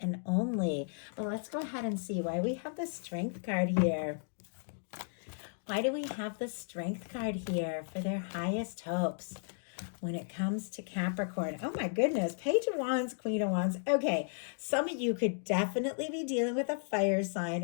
only. But let's go ahead and see why we have the Strength card here. Why do we have the Strength card here for their highest hopes when it comes to Capricorn? Oh my goodness, Page of Wands, Queen of Wands. Okay, some of you could definitely be dealing with a fire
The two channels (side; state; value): right; silent; digital silence